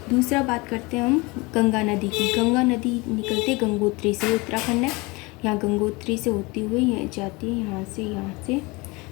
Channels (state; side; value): quieter; right; 25.0 dB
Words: दूसरा बात करते हैं हम गंगा नदी की। गंगा नदी निकलती है गंगोत्री से, उत्तराखंड है, यहाँ गंगोत्री से होती हुई ये जाती है यहाँ से